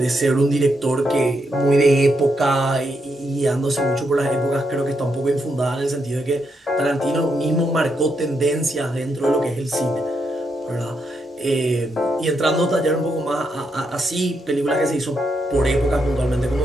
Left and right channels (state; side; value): normal; both; correlation 0.80